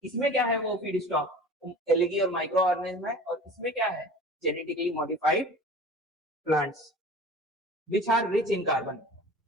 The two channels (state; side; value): normal; both; correlation 0.40